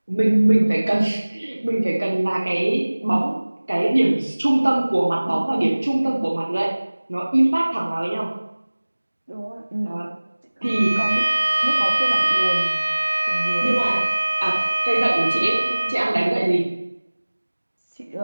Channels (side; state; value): both; inverted; correlation -1.00